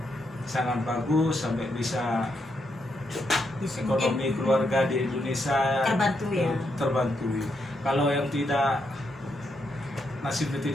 sangat bagus sampai bisa ekonomi keluarga di Indonesia terbantu. Kalau yang tidak, nasibnya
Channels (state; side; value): normal; both; correlation 0.80